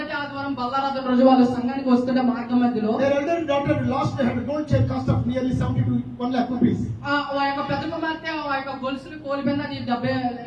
ఆదివారం బల్లారాధన రోజు వాళ్ళు సంఘానికి వస్తుంటే మార్గం మధ్యలో their elder daughter lost her gold chain cost of nearly 70 to 1 lakh rupees. ఆ యొక్క పెద్ద కుమార్తె ఆ యొక్క గొలుసుని కోల్పోయింది. అది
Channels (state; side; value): identical; both; correlation 1.00